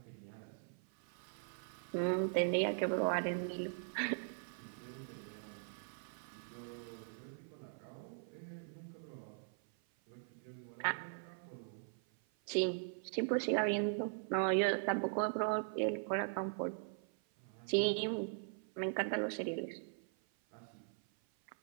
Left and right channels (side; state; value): left; silent; 51 dB below the other